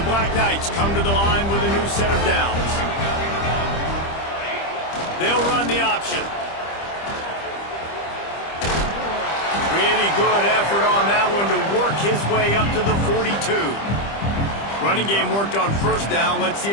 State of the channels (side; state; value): right; late; 25 ms